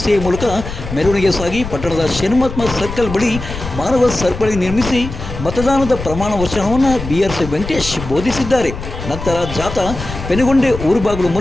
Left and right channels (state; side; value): noise; left; rumble, 9 dB below the sound